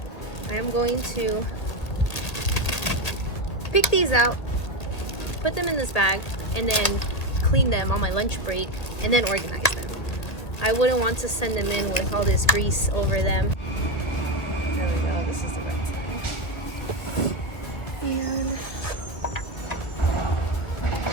I am going to pick these out, put them in this bag, and then clean them on my lunch break, and then organize them. I wouldn't want to send them in with all this grease over them. There we go, this is the right side. And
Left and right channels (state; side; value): late; right; 1.6 ms